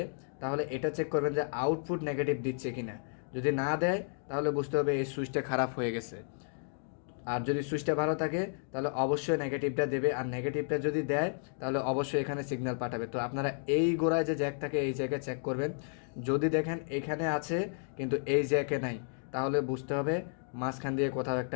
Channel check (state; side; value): silent; right; 56 dB below the other